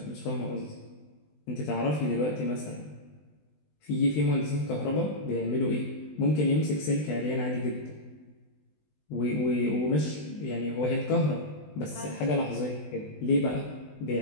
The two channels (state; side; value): late; right; 20 ms